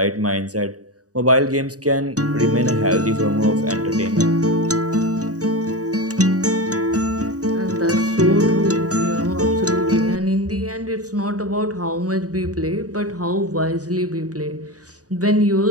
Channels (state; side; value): late; left; 0.67 ms